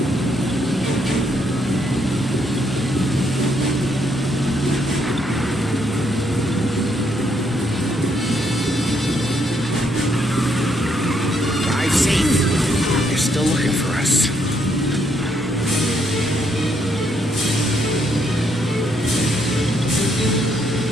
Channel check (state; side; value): normal; both; correlation 0.73